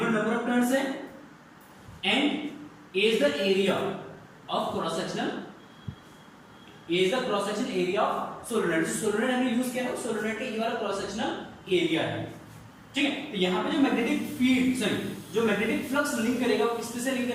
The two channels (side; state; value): both; identical; correlation 1.00